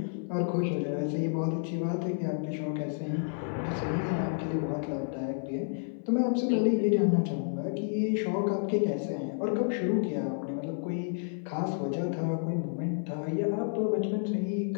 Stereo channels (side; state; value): right; silent; 57 dB below the other